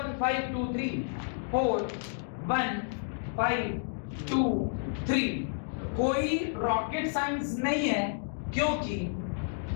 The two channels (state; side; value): silent; right; digital silence